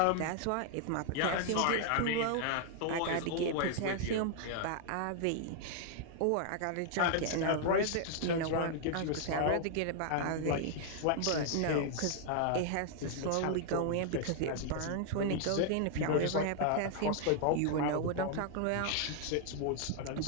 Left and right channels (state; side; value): different; both; correlation 0.00